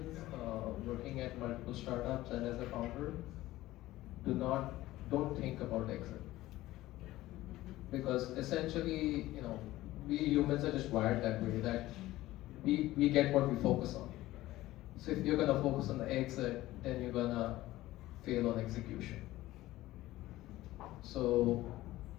working at multiple startups and as a founder, don't think about exit. Because essentially, we humans are just wired that way, that we get what we focus on. So if you're gonna focus on the exit, then you're gonna fail on execution. So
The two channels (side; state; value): right; quieter; 16.5 dB